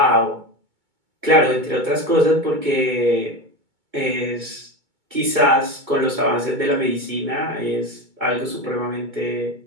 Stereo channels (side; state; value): left; late; 2.2 ms